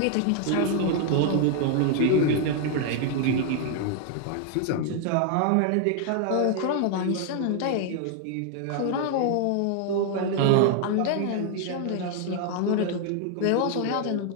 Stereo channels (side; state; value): both; different; correlation 0.00